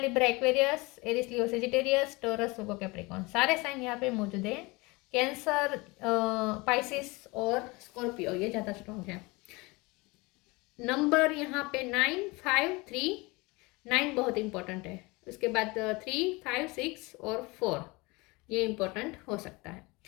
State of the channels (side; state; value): right; quieter; 24.7 dB